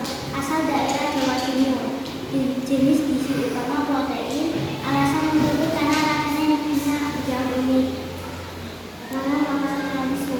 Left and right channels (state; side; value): identical; both; correlation 1.00